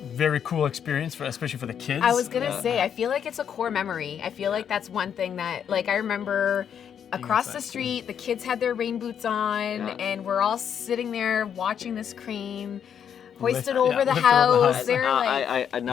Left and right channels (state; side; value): quieter; right; 8.3 dB